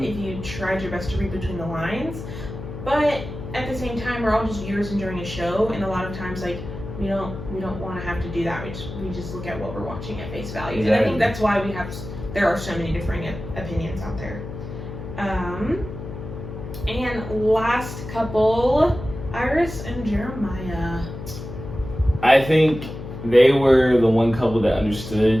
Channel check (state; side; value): noise; left; hum, 9 dB below the sound